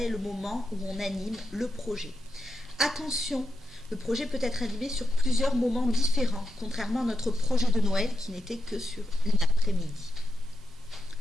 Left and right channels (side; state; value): both; normal; correlation 0.87